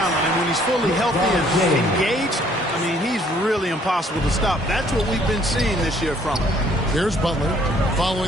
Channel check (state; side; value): normal; both; correlation 0.62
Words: and when he's fully healthy and engaged, I mean, he's really impossible to stop. That's what we've been seeing this year from him. Here's Butler,